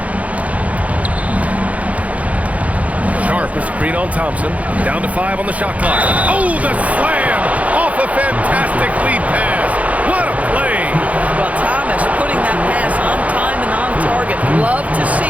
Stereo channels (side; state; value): left; late; 0.068 ms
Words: Sharp a screen on Thompson. Down to 5 on the shot clock. Oh, the slam! Off a fantastic lead pass. What a play! Well, Thomas putting that pass on time and on target. Love to